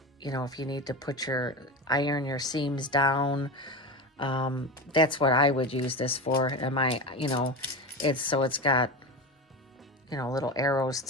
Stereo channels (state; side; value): normal; both; correlation 0.23